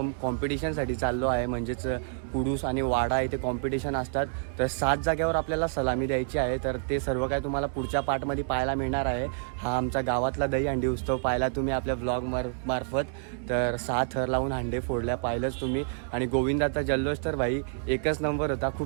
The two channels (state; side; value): silent; left; digital silence